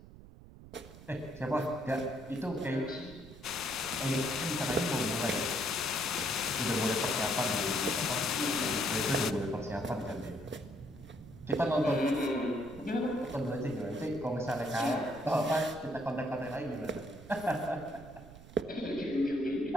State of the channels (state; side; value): noise; right; rumble, 17 dB below the sound